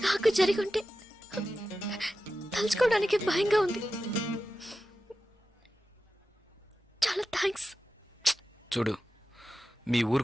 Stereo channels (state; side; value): normal; both; correlation 0.93